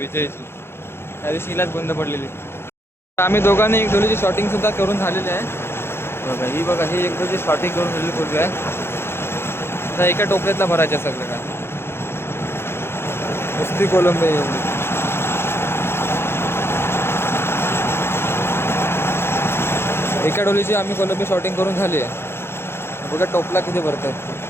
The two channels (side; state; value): right; late; 0.12 ms